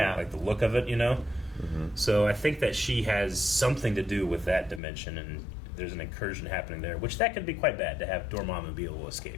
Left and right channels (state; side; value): drops out; right; at 4.8 s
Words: Like the look of it, you know? So I think that she has something to do with that dimension, and there's an incursion happening there, which that could be quite bad to have Dormammu be able to